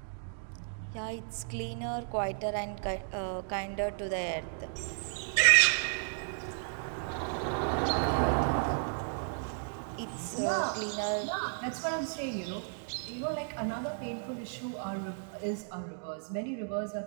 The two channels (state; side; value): silent; left; digital silence